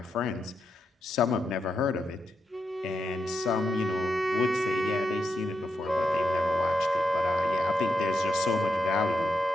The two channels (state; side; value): normal; both; correlation 0.84